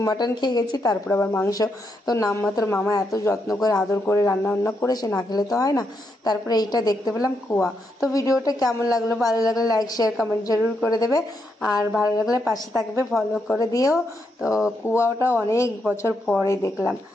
মাটন খেয়ে গেছি, তারপরে আবার মাংস। তো নামমাত্র মামা এত যত্ন করে আদর করে রান্না বান্না করেছে, না খেলে তো হয় না। তারপরে এইটা দেখতে পেলাম কুয়া। তো ভিডিওটা কেমন লাগলো, ভালো লাগলে লাইক শেয়ার কমেন্ট জরুর করে দেবে, আর ভালো লাগলে পাশে থাকবে, ফলো করে দিও। তো কুয়াটা অনেক বছর পরে দেখলাম।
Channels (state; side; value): normal; both; correlation 0.81